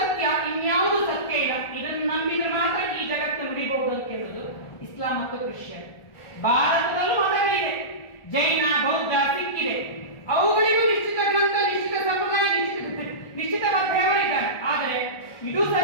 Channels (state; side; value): late; right; 1.4 ms